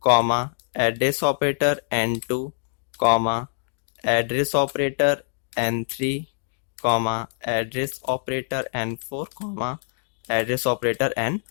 comma address operator n2 comma address operator n3 comma address operator n4 comma address operator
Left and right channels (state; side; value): silent; right; digital silence